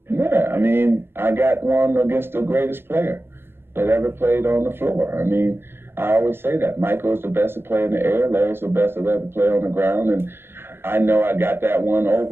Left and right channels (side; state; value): left; late; 0.11 ms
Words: Yeah, I got one against the greatest player that ever played on the floor. I always say that. Michael's the best to play in the air. Larry's the best to ever play on the ground. And I know I got that one